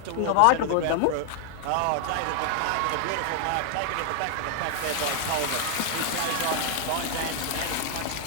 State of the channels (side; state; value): both; different; correlation 0.00